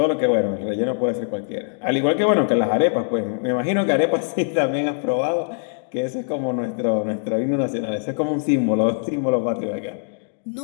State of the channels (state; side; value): silent; right; digital silence